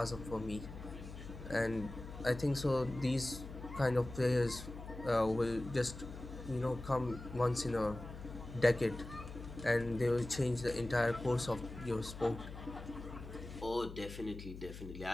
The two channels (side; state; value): left; noise; hum, 12 dB below the sound